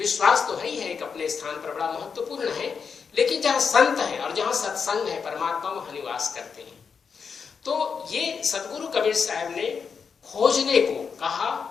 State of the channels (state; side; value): quieter; right; 6.0 dB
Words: तो है ही है, एक अपने स्थान पर बड़ा महत्वपूर्ण है, लेकिन जहाँ संत है और जहाँ सत्संग है, परमात्मा वहाँ निवास करते हैं। तो ये सदगुरु कबीर साहब ने खोजने को कहा,